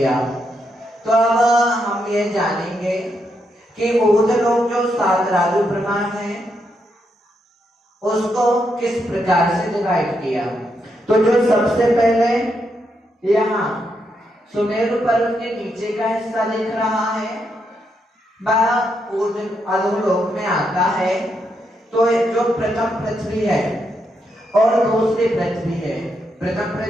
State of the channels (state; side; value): normal; both; correlation 0.80